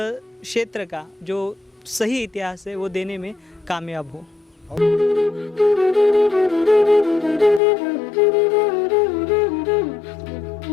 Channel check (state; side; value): drops out; right; at 7.6 s